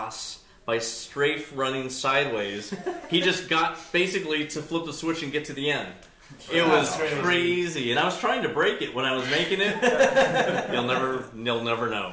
by strafe running sideways. He just got basically to flip the switch and get to the end. It was crazy, and I was trying to break it when I was making it. You'll never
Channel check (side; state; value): both; identical; correlation 1.00